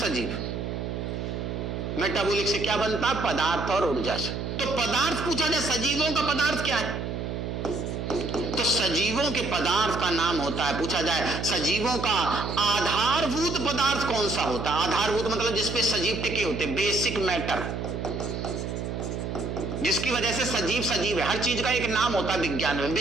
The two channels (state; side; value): noise; right; hum, 4 dB below the sound